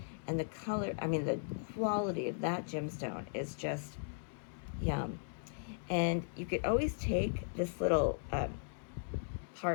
And the color, the quality of that gemstone is just yum. And you could always take this little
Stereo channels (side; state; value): right; silent; digital silence